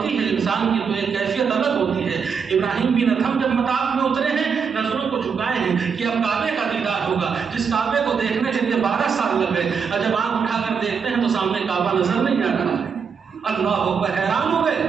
ہے انسان کی تو ایک کیفیت الگ ہوتی ہے۔ ابراہیم بن ادھم جب مطاف میں اترے ہیں، نظروں کو جھکائے ہیں کہ اب کعبے کا دیدار ہوگا، جس کعبے کو دیکھنے کے لیے 12 سال لگ گئے، اور جب آنکھ اٹھا کر دیکھتے ہیں تو سامنے کعبہ نظر نہیں آ رہا ہے۔ اللہ اکبر، حیران ہو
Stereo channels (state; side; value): quieter; left; 6.2 dB